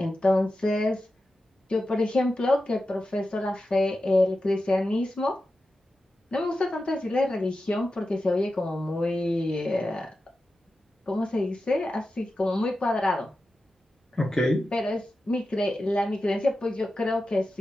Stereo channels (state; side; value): normal; both; correlation 0.92